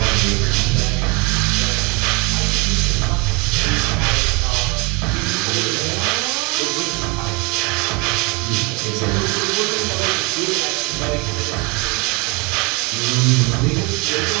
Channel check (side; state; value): left; quieter; 28.9 dB